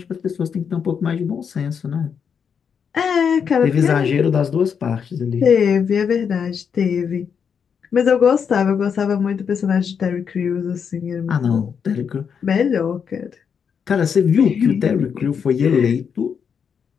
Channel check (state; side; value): quieter; right; 6.9 dB